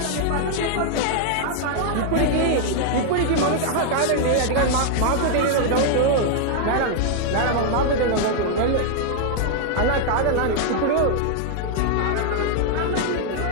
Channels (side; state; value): both; different; correlation 0.00